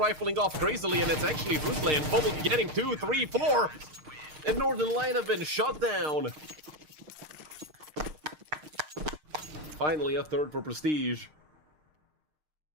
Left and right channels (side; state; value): left; late; 6.5 ms